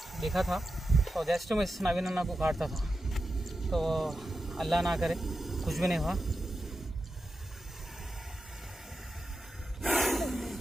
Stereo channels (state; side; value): normal; both; correlation 0.90